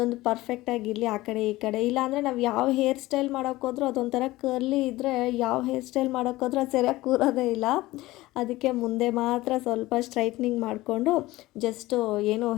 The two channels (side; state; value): right; quieter; 18.3 dB